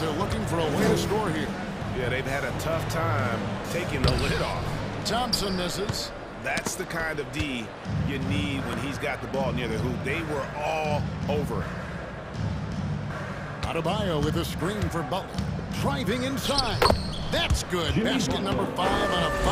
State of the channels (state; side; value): identical; both; correlation 1.00